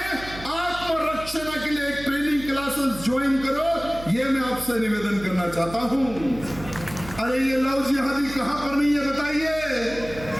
आत्मरक्षा के लिए एक ट्रेनिंग क्लासेस ज्वाइन करो, ये मैं आपसे निवेदन करना चाहता हूं। अरे ये लव जिहादी कहां पर नहीं है बताइए।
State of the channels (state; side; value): noise; right; hum, 14 dB below the sound